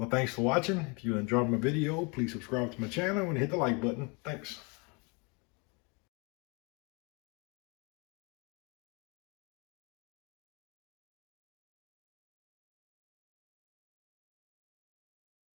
thanks for watching. If you enjoyed my video, please subscribe to my channel and hit the like button. Thanks.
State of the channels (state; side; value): quieter; right; 31.1 dB